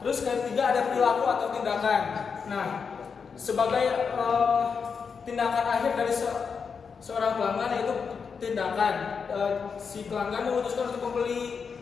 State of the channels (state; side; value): quieter; right; 5.8 dB